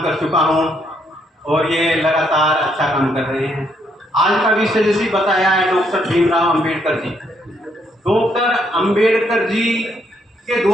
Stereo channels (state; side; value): normal; both; correlation 0.73